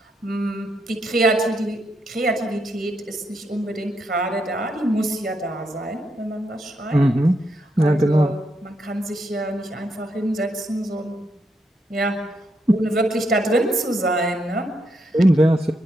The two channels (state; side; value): normal; both; correlation 0.80